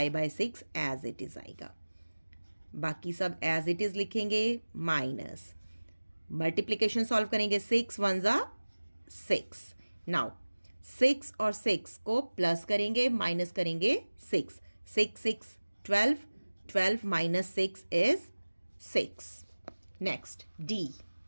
by 6 as it is आएगा। बाकी सब एज इट इज़ लिखेंगे, माइनस मल्टीप्लिकेशन सॉल्व करेंगे। 6 1 ज़ा 6। नाउ 6 और 6 को प्लस करेंगे, माइनस करेंगे 6। 6 6 12, 12 minus 6 is 6। Next D,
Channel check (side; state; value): both; inverted; correlation -1.00